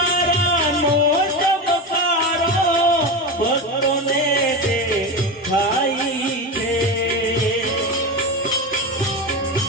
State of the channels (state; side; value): normal; both; correlation 0.20